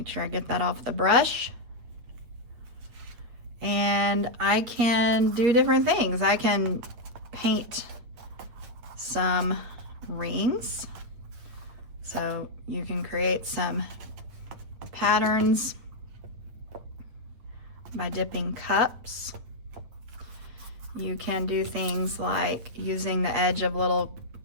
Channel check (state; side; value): late; left; 8.7 ms